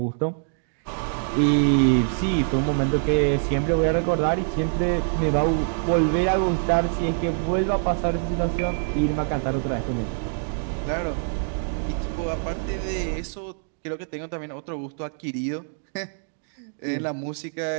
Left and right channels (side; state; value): left; silent; digital silence